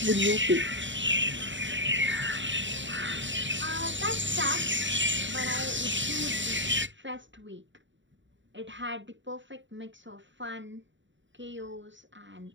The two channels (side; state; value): left; late; 0.54 ms